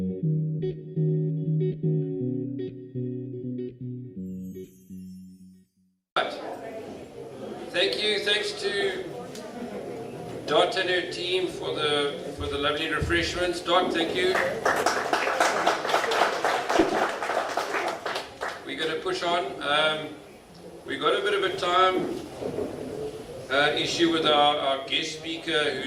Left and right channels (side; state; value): both; identical; correlation 1.00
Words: you. Thanks to Dot and her team for the lovely refreshments. Dot, thank you. We're going to push on. We got a bit of a time issue with our guest speaker,